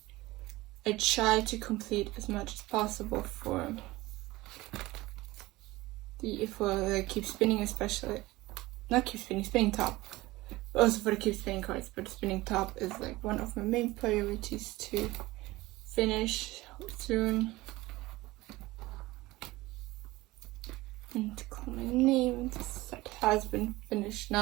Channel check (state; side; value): quieter; left; 19.4 dB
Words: I try to complete as much as possible for the keep spinning, especially not keep spinning, spinning top, but also for the keep spinning cards. But the spinning top is like one of my main priorities to finish soon. And to call my name, this set has been finished